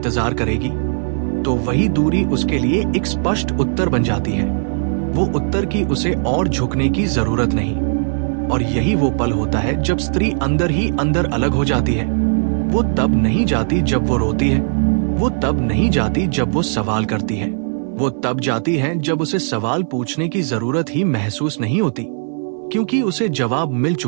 करेगी, तो वही दूरी उसके लिए एक स्पष्ट उत्तर बन जाती है। वो उत्तर की उसे और झुकने की जरूरत नहीं। और यही वो पल होता है जब स्त्री अंदर ही अंदर अलग हो जाती है। वो तब नहीं जाती जब वो रोती है, वो तब नहीं जाती जब वो सवाल करती है, वो तब जाती है जब उसे सवाल पूछने की जरूरत ही महसूस नहीं होती, क्योंकि उसे जवाब मिल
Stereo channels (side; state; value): left; silent; digital silence